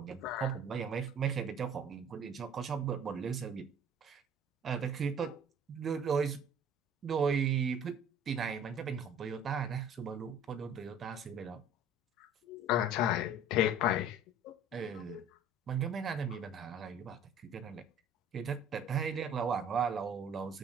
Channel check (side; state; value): both; normal; correlation 0.49